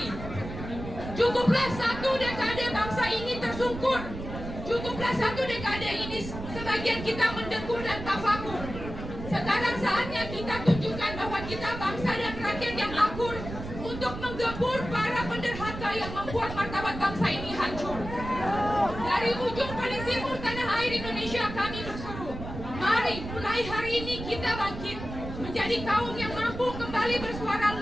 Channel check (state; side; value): noise; right; rumble, 9 dB below the sound